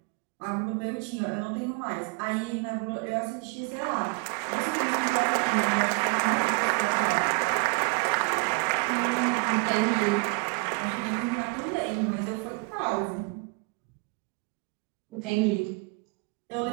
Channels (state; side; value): quieter; left; 31.4 dB